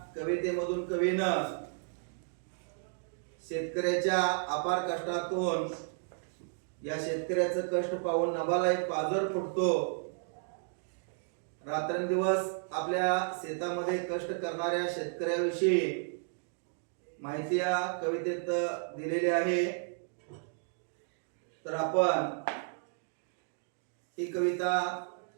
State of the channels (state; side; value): silent; left; digital silence